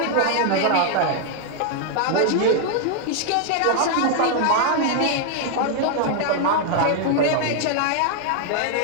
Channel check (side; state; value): both; different; correlation 0.00